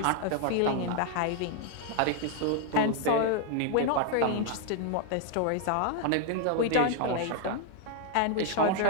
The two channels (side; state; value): both; different; correlation 0.00